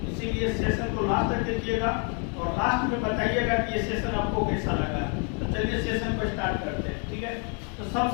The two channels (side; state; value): right; quieter; 39.3 dB